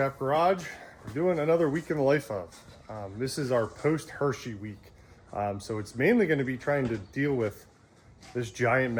Garage. We're doing another week in the life of. This is our post-Hershey week. So it's mainly going to be trying to deal with this giant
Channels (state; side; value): identical; both; correlation 1.00